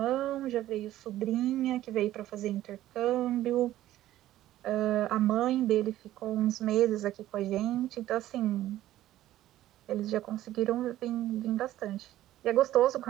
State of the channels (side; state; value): left; quieter; 14.0 dB